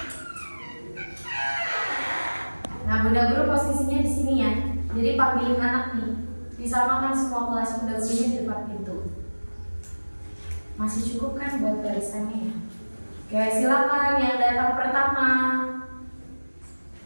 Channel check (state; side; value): inverted; both; correlation -1.00